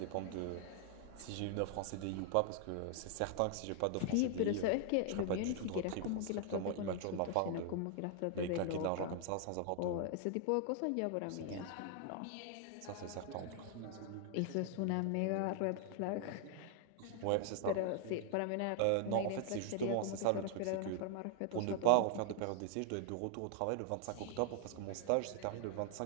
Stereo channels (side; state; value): both; different; correlation 0.00